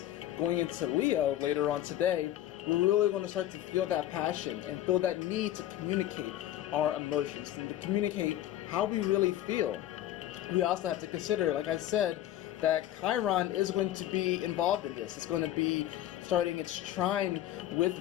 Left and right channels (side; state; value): right; quieter; 12.9 dB